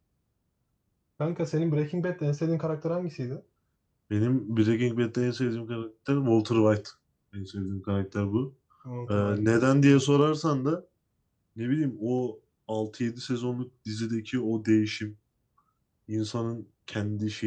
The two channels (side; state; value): both; identical; correlation 1.00